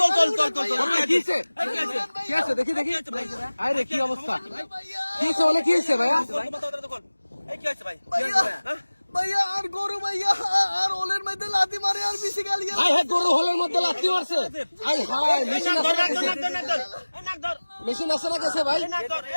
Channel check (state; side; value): inverted; both; correlation -1.00